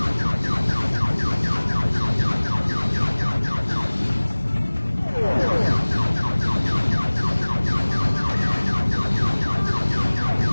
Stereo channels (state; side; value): inverted; both; correlation -1.00